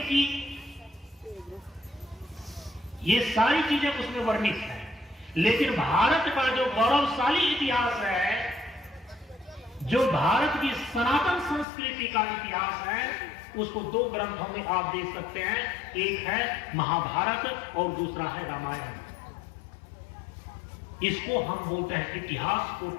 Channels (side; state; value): right; drops out; at 11.7 s